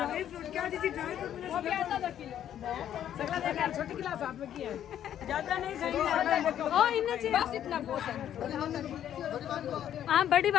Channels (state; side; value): quieter; right; 10.5 dB